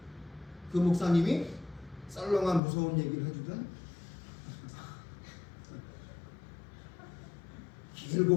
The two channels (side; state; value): right; drops out; at 2.6 s